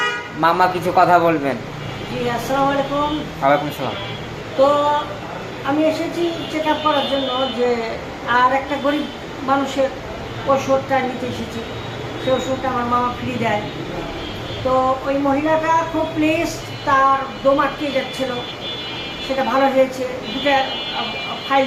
মামা কিছু কথা বলবেন। জি, আসসালামু আলাইকুম। ওয়ালাইকুম সালাম। তো আমি এসেছি চেক আপ করার জন্য, যে আর একটা গরিব মানুষের ওষুধটা নিতে এসেছি। সেই ওষুধটা আমার মামা ফ্রি দেয়। তো ওই মহিলাটা খুব প্লিজড, তার দম আটকে যাচ্ছিল, সেটা ভালো হয়েছে। দুটা ফাইল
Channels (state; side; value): identical; both; correlation 1.00